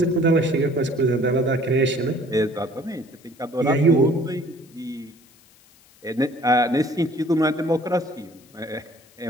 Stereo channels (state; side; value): noise; left; hiss, 29 dB below the sound